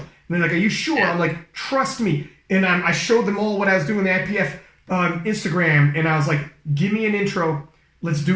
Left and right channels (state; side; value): identical; both; correlation 1.00